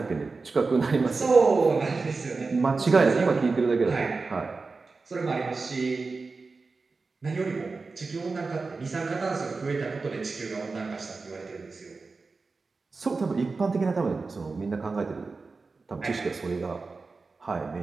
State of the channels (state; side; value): quieter; left; 4.1 dB